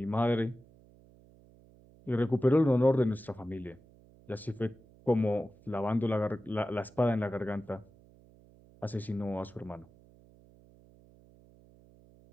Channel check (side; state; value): right; noise; hum, 26 dB below the sound